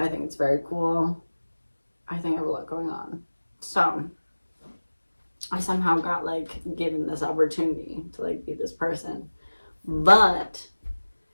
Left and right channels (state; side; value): inverted; both; correlation -1.00